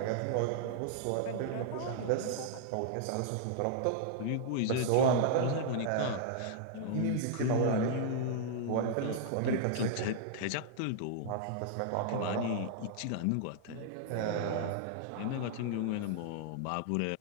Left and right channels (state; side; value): different; both; correlation -0.01